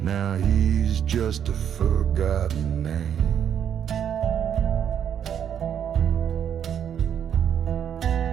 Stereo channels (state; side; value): quieter; left; 8.9 dB